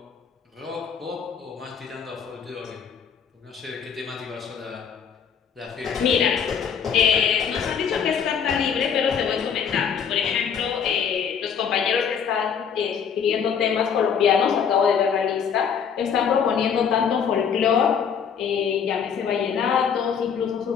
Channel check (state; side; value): quieter; right; 7.2 dB